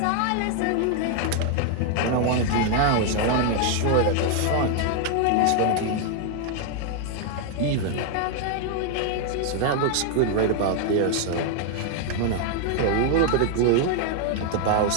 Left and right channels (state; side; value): different; both; correlation 0.00